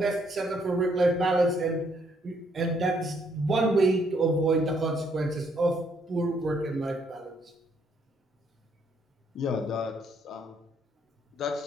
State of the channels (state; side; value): normal; both; correlation 0.70